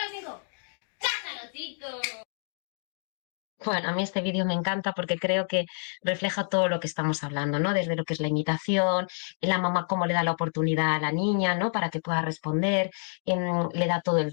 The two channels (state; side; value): silent; right; 59 dB below the other